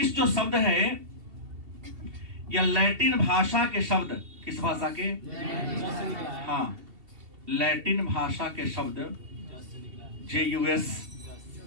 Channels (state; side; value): late; left; 2.7 ms